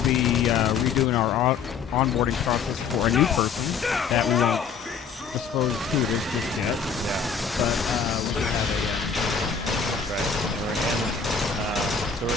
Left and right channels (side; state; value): right; quieter; 6.1 dB